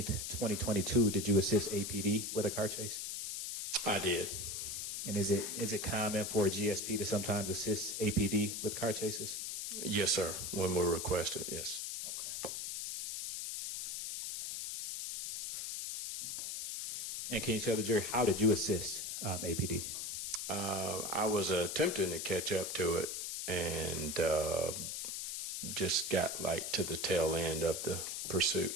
2022, did you assist APD with a car chase? I did. And is it common for a GSP to sometimes assist APD with car chases? Yes, sir. When we're requested, yes. Okay. And can you tell the jury, how did you assist APD? I was attempting to catch up to it and just got to the tail end of the pursuit.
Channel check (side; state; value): left; noise; hiss, 4 dB below the sound